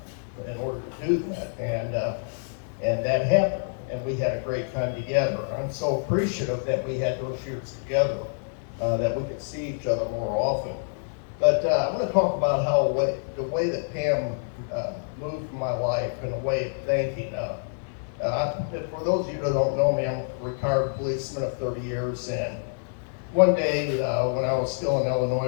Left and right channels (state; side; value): silent; right; 60 dB below the other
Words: in order to do that. And that happened, and we had a great time together. I'm so appreciative that we had those years together, that we could see each other more often. But I want to talk about how the way that Pam moved my life and a way of thinking. For those of you that don't know me, I'm a retired policeman of 30 years, and one day when I was still in